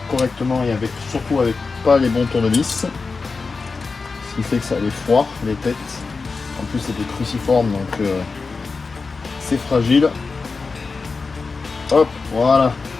correctement et surtout avec pas les bons tournevis. Ce qui fait que ça les foire, les têtes. En plus, c'est des cruciformes, donc c'est fragile. Hop, voilà.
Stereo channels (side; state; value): right; quieter; 4.4 dB